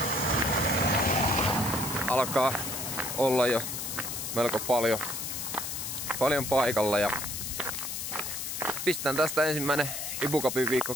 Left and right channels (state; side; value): noise; left; hiss, 5 dB below the sound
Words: alkaa olla jo melko paljon paikalla ja pistän tästä ensimmäinen IBU Cupin viikko